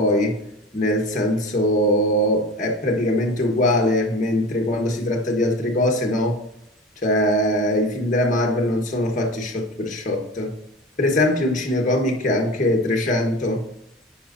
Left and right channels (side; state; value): both; normal; correlation 0.34